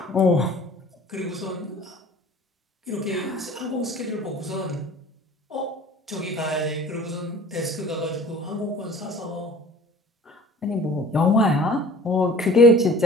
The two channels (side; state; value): both; normal; correlation 0.46